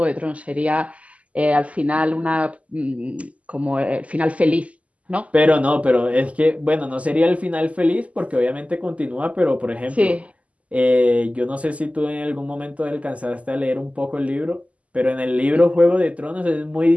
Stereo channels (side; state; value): left; late; 0.068 ms